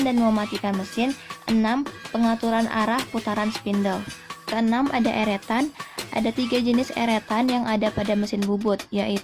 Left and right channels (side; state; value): both; identical; correlation 1.00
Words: dan mematikan mesin, 6. Pengaturan arah putaran spindle. Keenam ada eretan. Ada 3 jenis eretan yang ada pada mesin bubut,